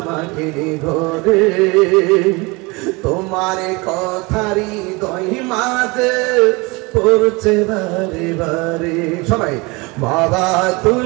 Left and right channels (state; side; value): quieter; left; 25.9 dB